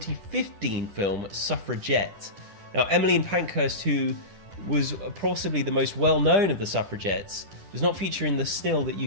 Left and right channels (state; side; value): late; left; 10 ms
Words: film Suffragette? Now, Emmeline Pankhurst, who was possibly the most well-known of the suffragettes, does not feature in the still that